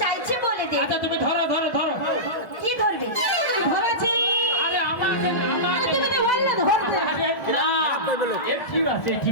চাইছে বলে দে। আচ্ছা তুমি ধরো ধরো ধরো। কি ধরবে? ধরেছি। আরে আমাকে আমাকে তুমি তো বললে ধরতে। আরে না, এ ঠিক আছে,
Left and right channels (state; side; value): late; right; 1.5 ms